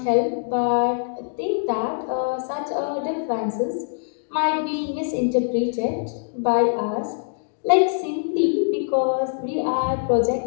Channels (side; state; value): right; silent; digital silence